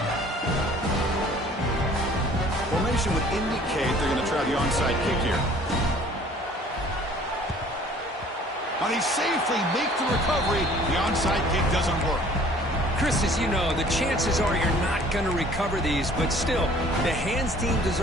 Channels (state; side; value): normal; both; correlation 0.53